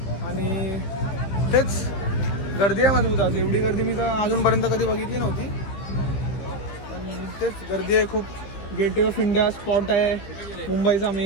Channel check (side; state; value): right; late; 15 ms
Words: आणि तेच गर्दी आहे मजबूत. आज एवढी गर्दी मी तर अजूनपर्यंत कधी बघितली नव्हती. पण तेच गर्दी आहे खूप. गेटवे ऑफ इंडिया स्पॉट आहे मुंबईचा